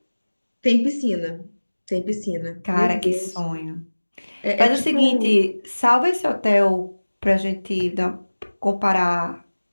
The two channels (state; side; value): inverted; both; correlation -1.00